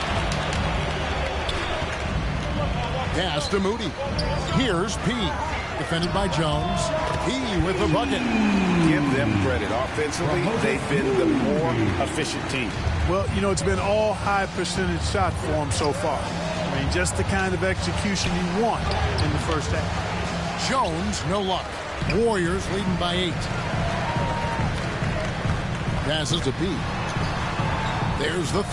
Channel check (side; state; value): both; identical; correlation 1.00